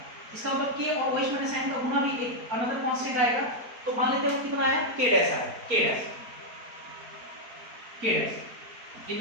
इसका मतलब K और OH माइनस साइन का गुना भी एक अनदर कांस्टेंट आएगा, तो मान लेते हैं कितना आया, K डैश आया, K डैश इन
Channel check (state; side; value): late; left; 4.3 ms